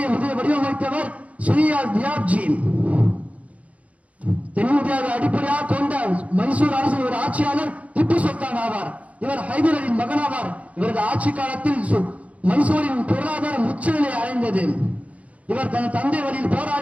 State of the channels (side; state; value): left; late; 0.066 ms